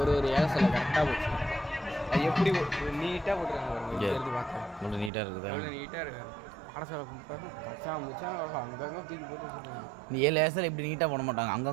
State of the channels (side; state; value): left; drops out; at 5.1 s